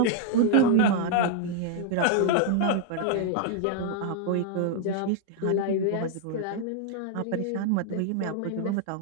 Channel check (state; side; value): different; both; correlation 0.00